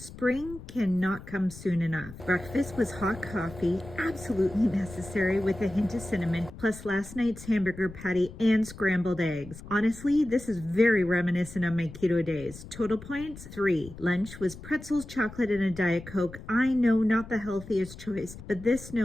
cannot come soon enough. Breakfast was hot coffee, absolutely necessary with a hint of cinnamon, plus last night's hamburger patty and scrambled eggs. Honestly, this is very reminiscent of my keto days. Total points, 3. Lunch was pretzels, chocolate, and a Diet Coke. I know not the healthiest choice, but this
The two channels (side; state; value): left; noise; rumble, 15 dB below the sound